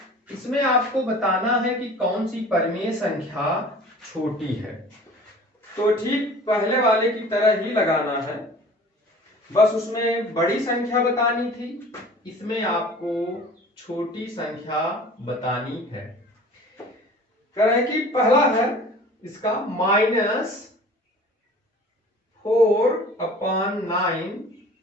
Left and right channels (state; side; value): normal; both; correlation 0.45